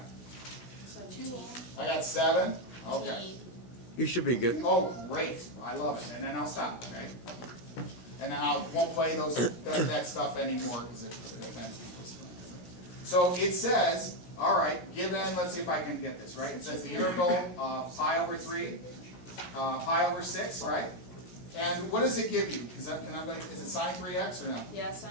So 2 long. I got 7. Okay. You should be good. Oh, great. I love it. And then I'll stop, okay? And then I won't play that stuff anymore because it offends people. So it says, all right, given, let's see if I can get this, right? It says the integral of pi over 3, pi over 6, right? And what does it give you? Is it sine 3x or no? Yeah,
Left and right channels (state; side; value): late; right; 16 ms